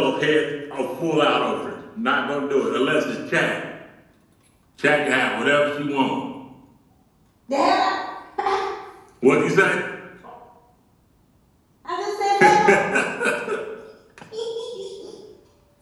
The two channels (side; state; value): both; identical; correlation 1.00